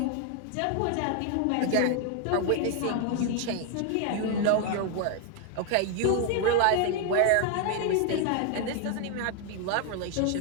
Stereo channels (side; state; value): both; different; correlation 0.00